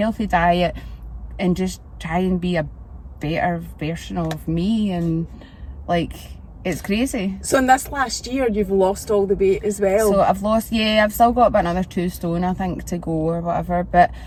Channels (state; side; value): identical; both; correlation 1.00